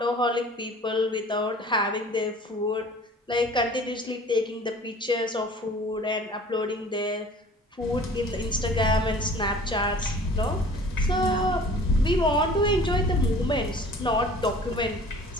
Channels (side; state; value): both; normal; correlation 0.47